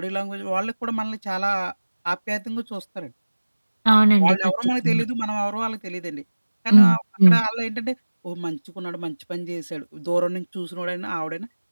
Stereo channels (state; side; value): inverted; both; correlation -1.00